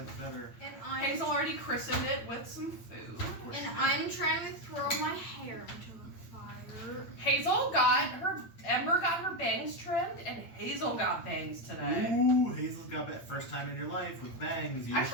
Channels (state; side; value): late; right; 8.8 ms